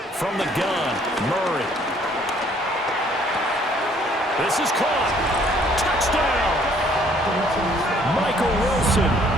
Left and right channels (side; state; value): both; normal; correlation 0.62